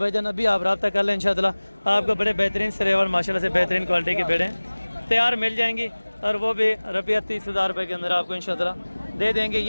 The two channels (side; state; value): both; inverted; correlation -1.00